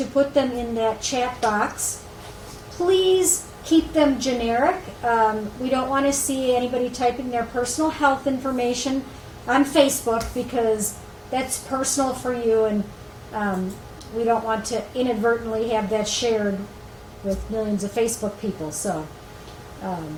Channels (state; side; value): identical; both; correlation 1.00